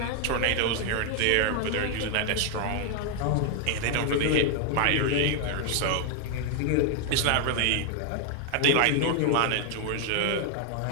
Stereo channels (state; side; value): different; both; correlation 0.00